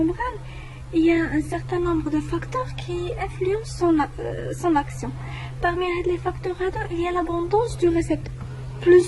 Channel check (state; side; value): identical; both; correlation 1.00